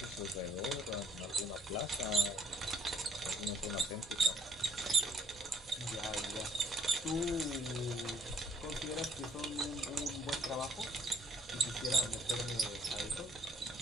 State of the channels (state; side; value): normal; both; correlation 0.64